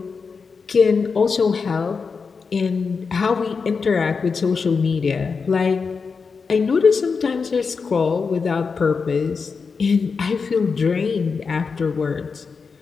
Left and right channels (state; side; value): quieter; right; 5.1 dB